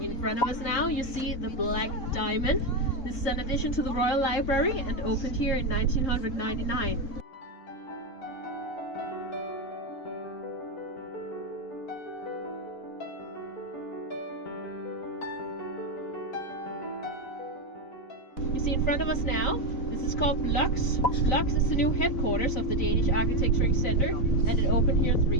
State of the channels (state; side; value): late; right; 3.9 ms